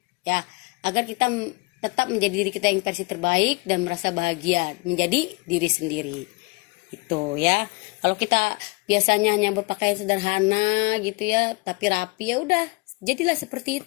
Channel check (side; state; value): right; quieter; 27.3 dB